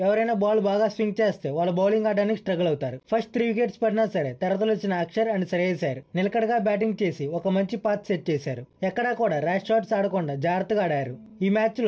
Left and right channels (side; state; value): both; identical; correlation 1.00